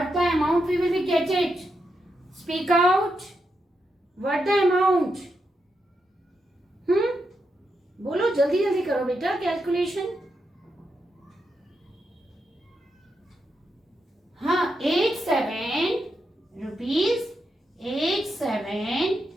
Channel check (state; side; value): normal; both; correlation 0.84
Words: the amount we will be get it? Speak out. What the amount? बोलो जल्दी जल्दी करो बेटा calculation. हाँ 87 rupees